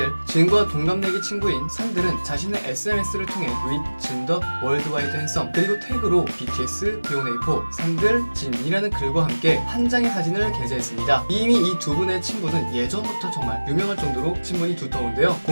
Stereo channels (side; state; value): both; inverted; correlation -1.00